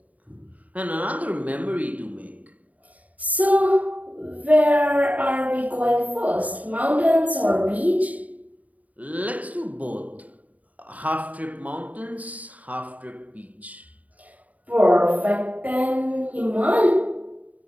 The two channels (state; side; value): late; left; 0.072 ms